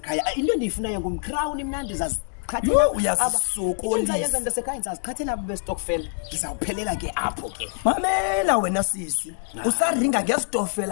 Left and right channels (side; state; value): right; silent; digital silence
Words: into endiyifunayo ngumcrown mna ndizazi uyazisokolisa yenza ndasekhaya ndizaziqhathela abo bestokfela ndizawuphelela ke apho ke. Mamela wena sisi usaringa